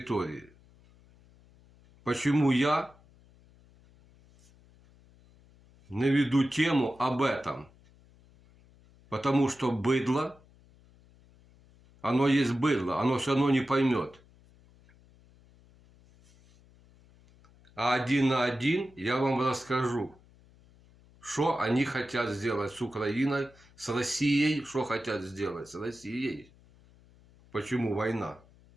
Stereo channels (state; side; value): noise; left; hum, 28 dB below the sound